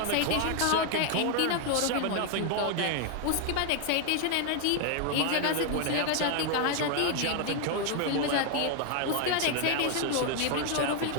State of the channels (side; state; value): both; different; correlation 0.00